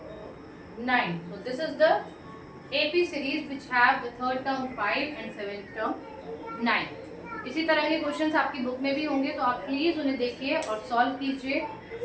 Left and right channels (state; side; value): identical; both; correlation 1.00